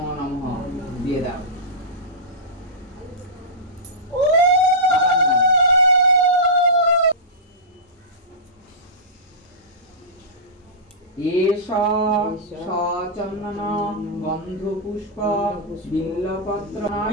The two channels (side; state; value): both; normal; correlation -0.16